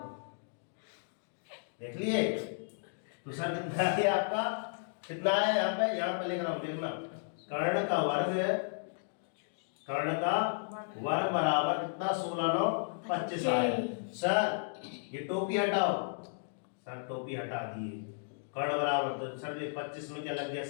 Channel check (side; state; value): right; silent; digital silence